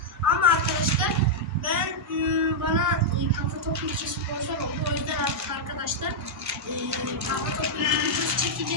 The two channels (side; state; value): both; normal; correlation -0.04